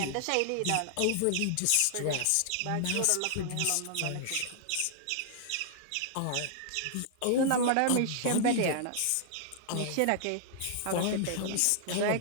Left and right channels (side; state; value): both; different; correlation -0.01